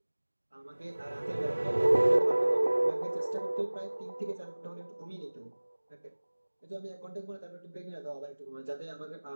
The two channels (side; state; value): both; inverted; correlation -1.00